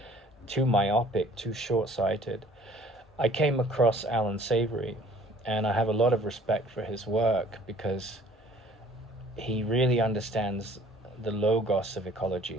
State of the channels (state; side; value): normal; both; correlation 0.54